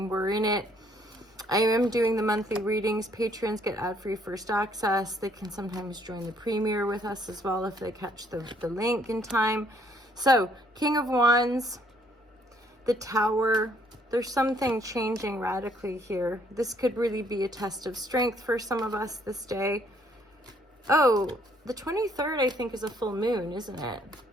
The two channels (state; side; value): normal; both; correlation 0.65